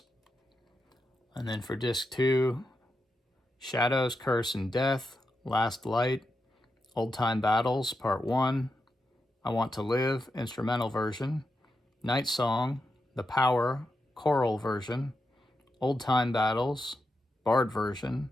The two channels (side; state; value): both; normal; correlation 0.87